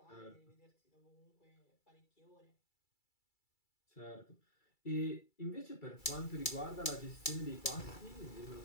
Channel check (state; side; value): late; right; 2.3 ms